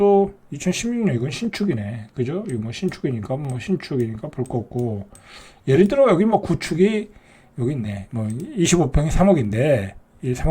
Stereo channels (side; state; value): both; identical; correlation 1.00